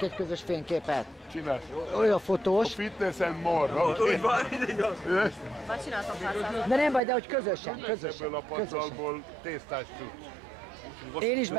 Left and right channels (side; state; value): left; drops out; at 7.0 s